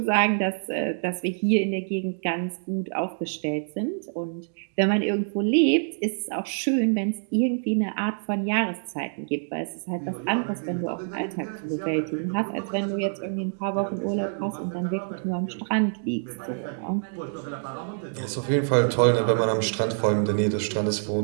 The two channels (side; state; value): left; silent; digital silence